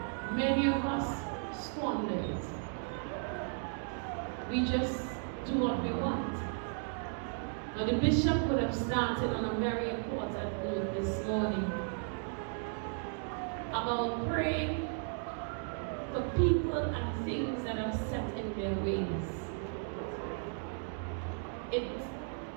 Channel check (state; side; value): silent; left; 54 dB below the other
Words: many of us squander it. We just do what we want. Now the bishop would have started on a very important note this morning about praying for people and things that are set in their ways. It